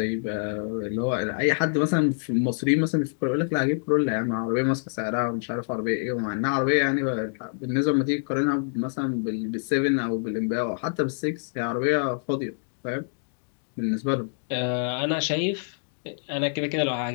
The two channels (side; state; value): right; silent; digital silence